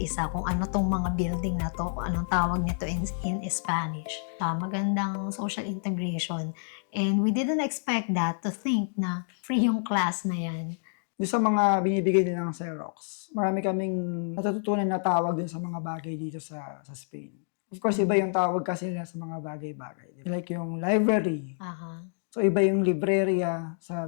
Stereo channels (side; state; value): right; silent; digital silence